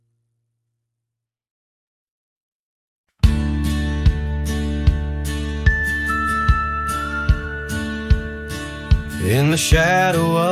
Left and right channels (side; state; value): both; identical; correlation 1.00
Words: In the shadow